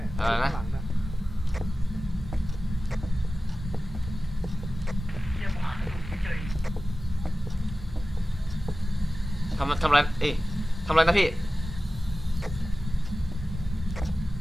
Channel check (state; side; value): normal; both; correlation 0.95